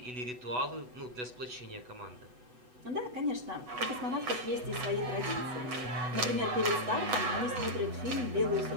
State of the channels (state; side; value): late; left; 8.1 ms